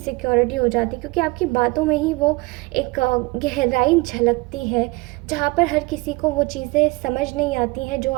हो जाती है, क्योंकि आपकी बातों में ही वो एक गहराई झलकती है, जहाँ पर हर किसी को वो चीज़ें समझ नहीं आती हैं जो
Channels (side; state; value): left; quieter; 24.5 dB